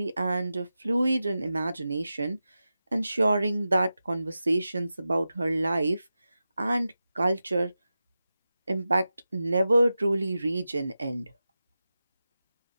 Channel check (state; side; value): inverted; both; correlation -0.93